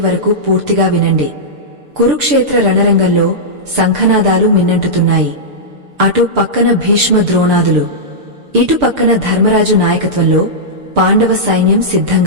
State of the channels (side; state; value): left; late; 6.8 ms